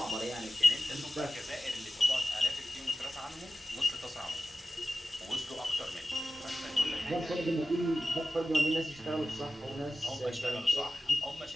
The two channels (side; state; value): both; normal; correlation 0.94